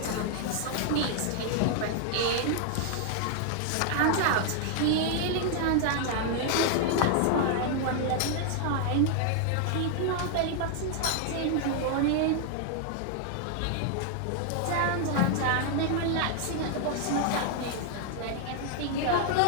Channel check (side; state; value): both; different; correlation 0.00